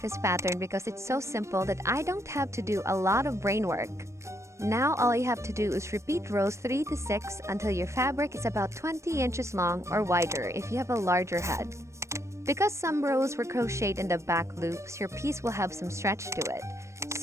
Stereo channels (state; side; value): late; left; 0.14 ms